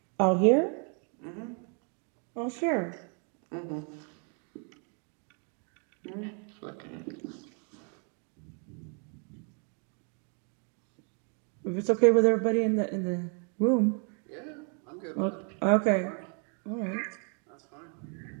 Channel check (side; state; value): left; quieter; 39.5 dB